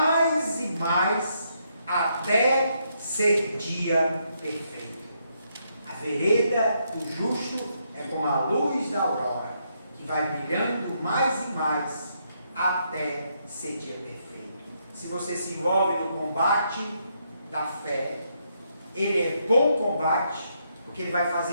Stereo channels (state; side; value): inverted; both; correlation -0.77